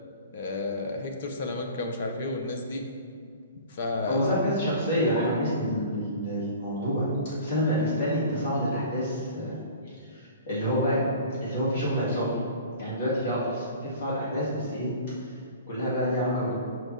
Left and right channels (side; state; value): both; inverted; correlation -0.42